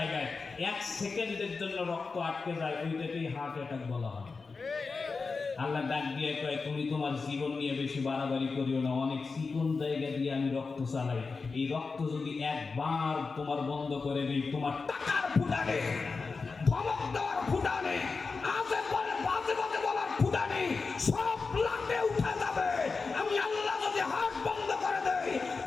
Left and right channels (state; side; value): quieter; right; 4.4 dB